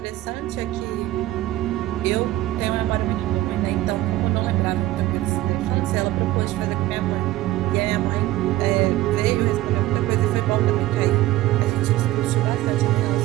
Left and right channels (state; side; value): quieter; left; 15.8 dB